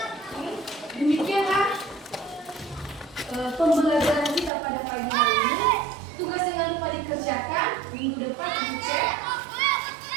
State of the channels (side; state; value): left; drops out; at 4.5 s